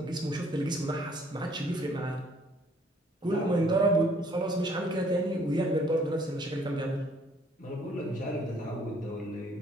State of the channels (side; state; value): both; normal; correlation 0.61